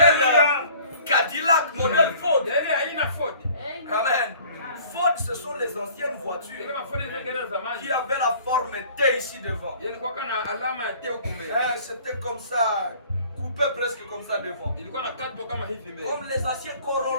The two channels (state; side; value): inverted; both; correlation -0.51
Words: Cadillac, modèle Ford. Amen. Ford, ce sont les anciennes voitures qui avaient la forme T ici devant. C'était comme ça. Coupé presque comme ça devant. Comme les anciens